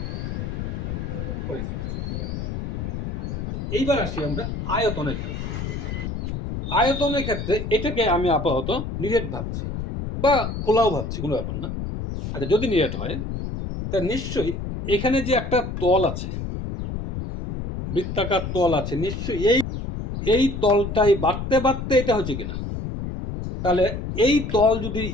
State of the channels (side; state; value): left; noise; rumble, 5 dB below the sound